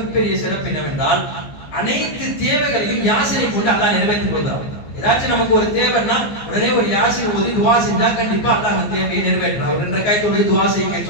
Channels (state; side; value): late; right; 14 ms